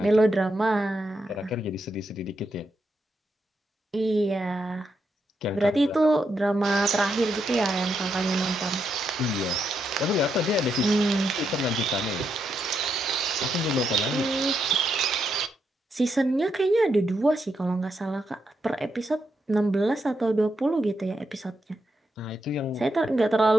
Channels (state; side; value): normal; both; correlation 0.82